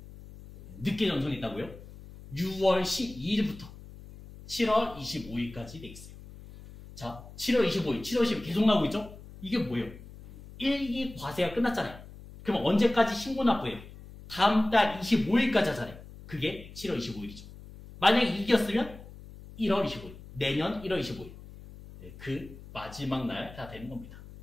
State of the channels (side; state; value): left; noise; hum, 15 dB below the sound